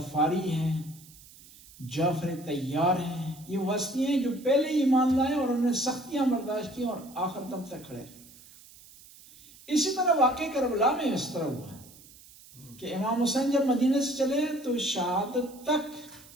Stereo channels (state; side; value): noise; right; hiss, 22 dB below the sound